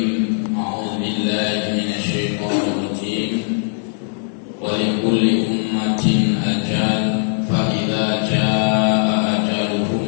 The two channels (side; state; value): right; silent; 66 dB below the other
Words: A'udzu billahi minasyaitonir rajim. Wa likulli ummatin ajal fa idza jaa